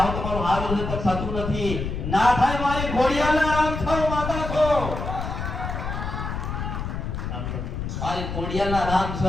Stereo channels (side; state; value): left; noise; rumble, 4 dB below the sound